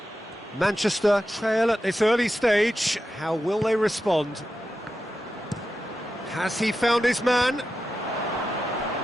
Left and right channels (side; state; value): both; normal; correlation 0.91